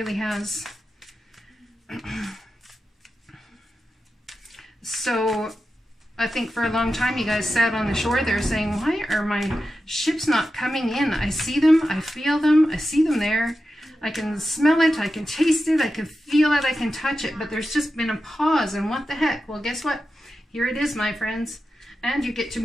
has. So, I think for a long time you guys sat on the shore there saying, why are my ships not coming in? I see them, I feel them, I see them there. I can smell it, I can taste it, I can feel it, I can touch it. But there's just been a pause, and what the heck? Well, guess what? Here it is, my friends. And you get to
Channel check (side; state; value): both; normal; correlation 0.91